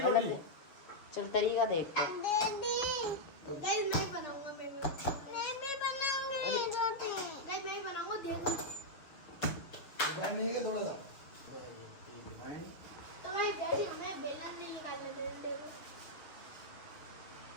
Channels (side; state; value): right; late; 7.0 ms